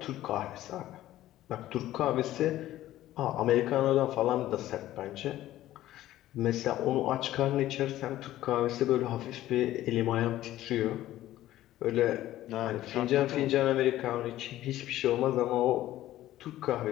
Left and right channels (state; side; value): quieter; right; 14.3 dB